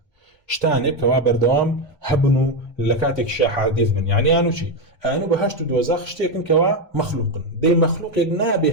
شتاني كوابر دوام هبنو لكاتك شا حديث من يعني انو شي انو بهشت دوزاخ شتيكن كوا مخلوق دي مخلوق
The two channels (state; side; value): normal; both; correlation 0.08